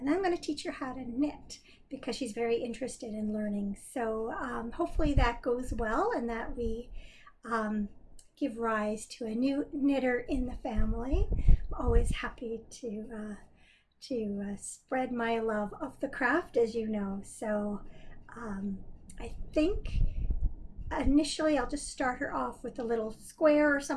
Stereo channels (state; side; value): identical; both; correlation 1.00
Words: then I'm going to teach her how to knit, because she's very interested in learning. So hopefully that goes well, and that we give rise to a new knitter in the family. I'm always happy to spread my love of the craft, as you know. So I think initially I'll just start her off with a little square or